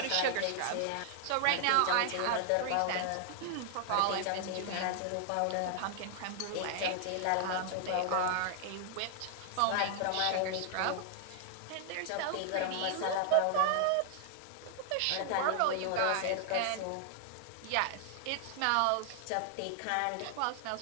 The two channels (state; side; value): different; both; correlation 0.00